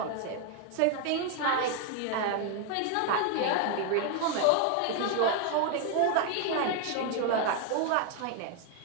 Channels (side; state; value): both; different; correlation 0.01